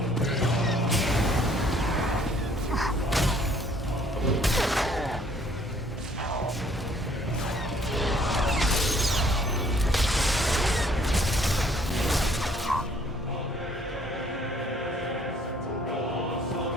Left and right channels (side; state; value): both; normal; correlation 0.61